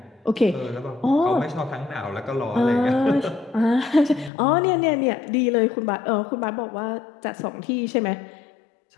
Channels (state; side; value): drops out; right; at 4.3 s